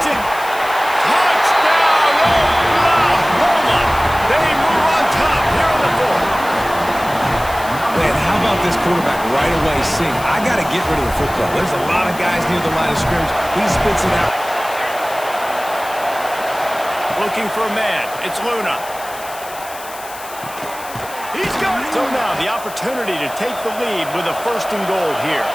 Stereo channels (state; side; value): noise; left; hiss, 15 dB below the sound